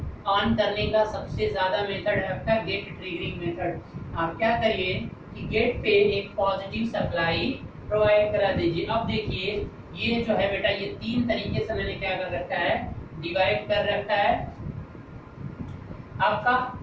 ऑन करने का, सबसे ज़्यादा मेथड है आपका गेट ट्रिगरिंग मेथड। आप क्या करिए कि गेट पे एक पॉजिटिव सप्लाई प्रोवाइड करा दीजिए। अब देखिए ये जो है बेटा, ये तीन तरीके से मैंने क्या कर रखा है, डिवाइड कर रखा है। आपका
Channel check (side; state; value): both; identical; correlation 1.00